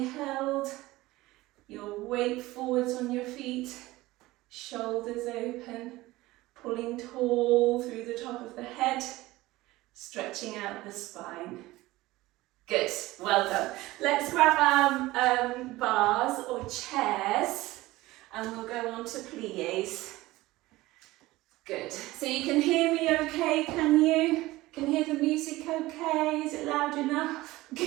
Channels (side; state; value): left; quieter; 18.6 dB